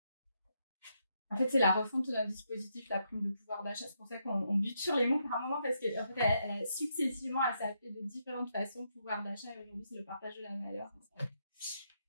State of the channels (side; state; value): both; inverted; correlation -0.79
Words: En fait, c'est la refonte d'un dispositif, la prime de pouvoir d'achat. C'est pour ça qu'on bute sur les mots par un moment, parce que en fait, successivement, elle s'est appelée de différentes façons, pouvoir d'achat, et aujourd'hui, c'est le partage de la valeur.